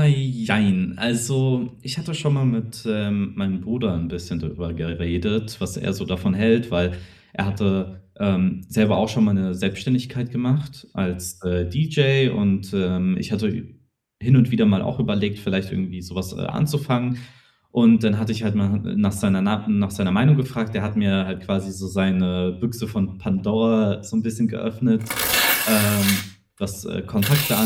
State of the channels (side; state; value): both; identical; correlation 1.00